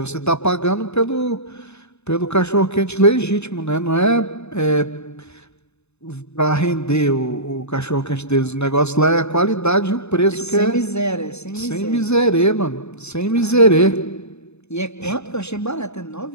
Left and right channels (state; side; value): late; right; 0.81 ms